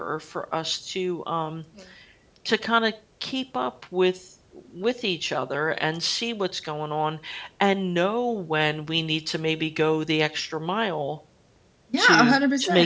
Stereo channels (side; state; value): both; identical; correlation 1.00